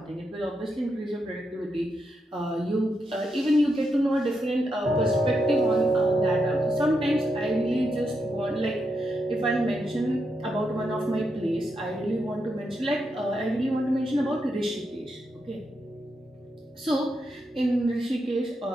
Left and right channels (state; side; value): normal; both; correlation 0.83